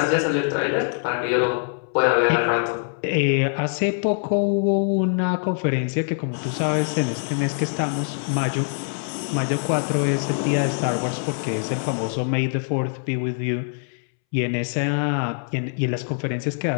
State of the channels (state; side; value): silent; right; 63 dB below the other